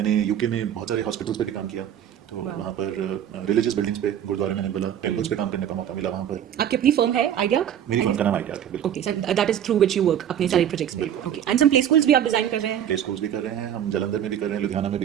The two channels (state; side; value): quieter; left; 9.9 dB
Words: यूके में बहुत सारे हॉस्पिटल्स पे भी काम किया। तो वहाँ पर रिलीजियस बिल्डिंग्स पे, गुरुद्वारे मैंने बोला, टेम्पल्स पे काम करने का मौका मिला वहाँ पर। आपकी अपनी फर्म है आइडिया? मेरी फर्म का नाम आइडिया है, बिल्कुल। Okay, so that is through which you work अपने सारे प्रोजेक्ट्स में। बिल्कुल। Okay, and some play schools भी आप डिजाइन कर रहे हैं? प्ले स्कूल्स भी कर रहे हैं, हम जलंधर में भी कर रहे हैं, लुधियाना में भी